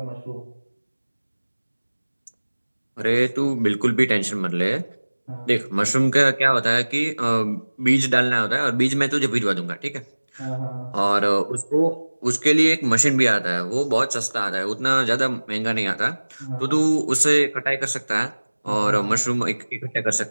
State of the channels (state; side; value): inverted; both; correlation -1.00